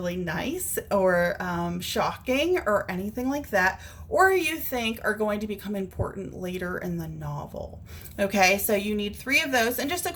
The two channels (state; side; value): identical; both; correlation 1.00